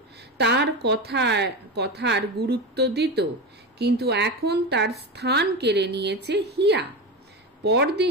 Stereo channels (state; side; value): normal; both; correlation 0.21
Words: তার কথার গুরুত্ব দিত, কিন্তু এখন তার স্থান কেড়ে নিয়েছে হিয়া।